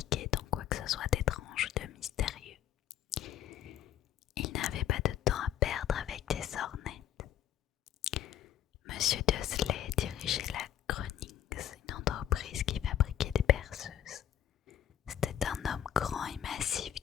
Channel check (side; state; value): right; quieter; 10.8 dB